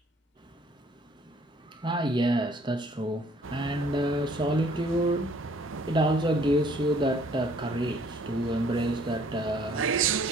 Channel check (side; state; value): both; normal; correlation 0.58